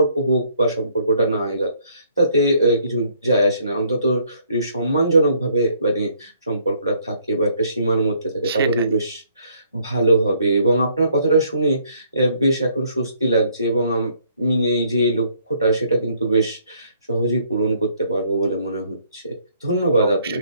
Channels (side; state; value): both; inverted; correlation -0.66